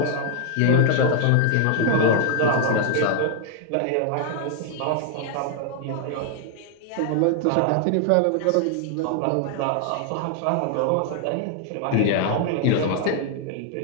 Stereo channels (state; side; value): different; both; correlation 0.00